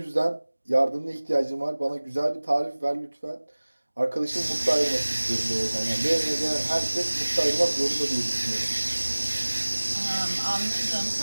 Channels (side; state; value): both; inverted; correlation -1.00